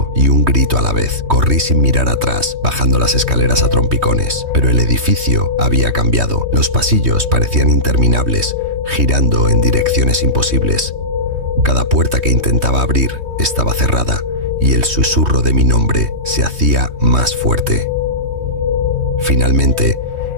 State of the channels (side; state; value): left; late; 3.2 ms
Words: y un grito a la vez. Corrí sin mirar atrás, bajando las escaleras a trompicones. Pero el edificio había cambiado. Los pasillos parecían interminables, girando en direcciones imposibles. Cada puerta que intentaba abrir estaba cerrada y el susurro de mi nombre se hacía más fuerte. Finalmente,